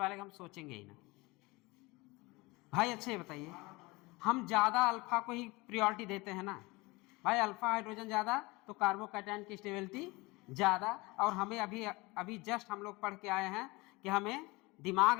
का हम सोचेंगे ही ना भाई। अच्छे बताइए, हम ज़्यादा अल्फा को ही प्रायोरिटी देते हैं ना भाई। अल्फा हाइड्रोजन ज़्यादा तो कार्बोकैटायन की स्टेबिलिटी ज़्यादा। और हमें अभी जस्ट हम लोग पढ़ के आए हैं कि हमें दिमाग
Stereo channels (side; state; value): right; quieter; 23.5 dB